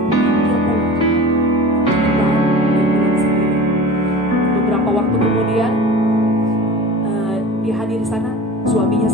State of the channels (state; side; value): normal; both; correlation 0.37